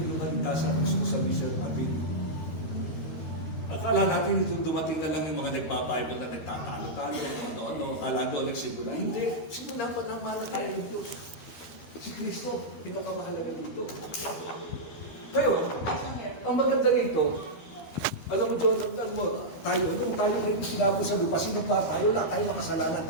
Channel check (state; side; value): late; right; 13 ms